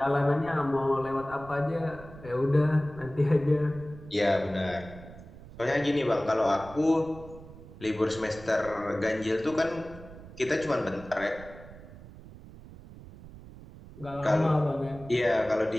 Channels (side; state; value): right; noise; rumble, 17 dB below the sound